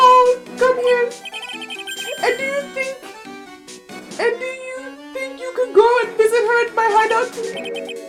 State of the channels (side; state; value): both; identical; correlation 1.00